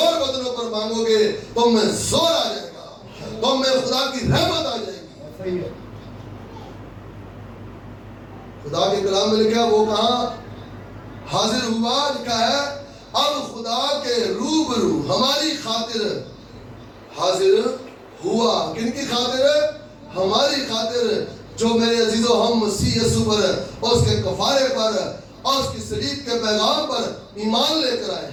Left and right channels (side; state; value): both; identical; correlation 1.00